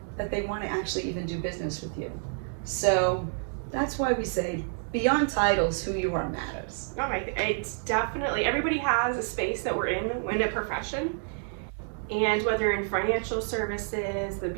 that they want to actually even do business with you? So that's why we say, beyond titles, who you are matters. Oh my, it's definitely, everybody has a space that we're in a profession. And whether in financial services, the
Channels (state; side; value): silent; left; 56 dB below the other